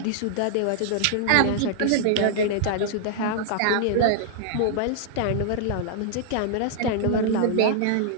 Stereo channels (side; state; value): both; different; correlation -0.01